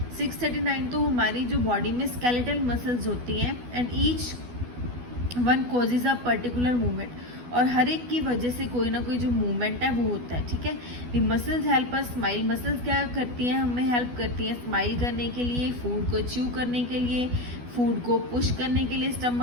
639 तो हमारी जो बॉडी में स्केलेटल मसल्स होती हैं, and each one causes a particular movement. और हर एक की वजह से कोई ना कोई जो मूवमेंट है वो होता है। ठीक है, the muscles help us smile. Muscles क्या करती हैं? हमें हेल्प करती हैं स्माइल करने के लिए, फूड को च्यू करने के लिए, फूड को पुश करने के लिए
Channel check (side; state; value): left; late; 12 ms